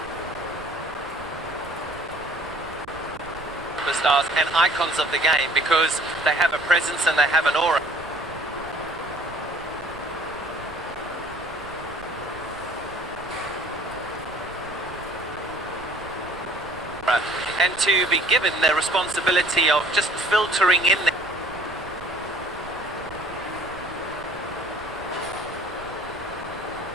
superstars and icons of the game, because they have a presence and they have an aura. And to be given the responsibility of just filtering in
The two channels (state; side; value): noise; right; rumble, 17 dB below the sound